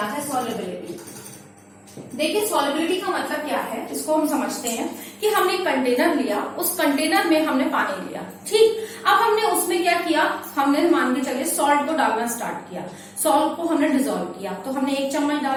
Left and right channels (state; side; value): identical; both; correlation 1.00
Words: है solubility? देखिए सॉलिबिलिटी का मतलब क्या है, इसको हम समझते हैं कि हमने एक कंटेनर लिया, उस कंटेनर में हमने पानी लिया, ठीक. अब हमने उसमें क्या किया, हमने मान के चलिए सॉल्ट को डालना स्टार्ट किया. सॉल्ट को हमने डिजोल्व किया, तो हमने 1 चम्मच